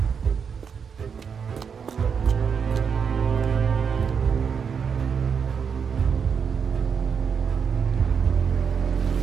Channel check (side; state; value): left; quieter; 6.6 dB